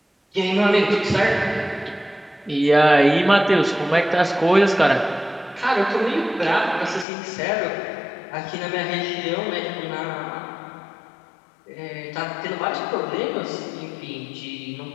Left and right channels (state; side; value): drops out; right; at 7.1 s